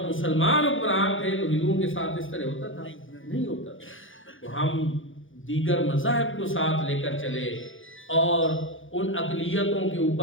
مسلمان حکمران تھے تو ہندوؤں کے ساتھ اس طرح ہوتا تھا؟ نہیں ہوتا تھا۔ تو ہم دیگر مذاہب کو ساتھ لے کر چلے، اور ان اقلیتوں کے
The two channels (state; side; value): late; right; 0.57 ms